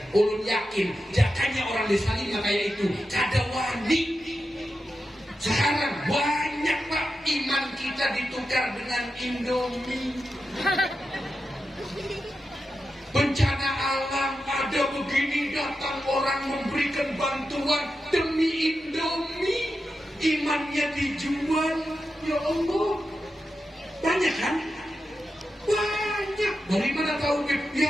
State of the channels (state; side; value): normal; both; correlation 0.90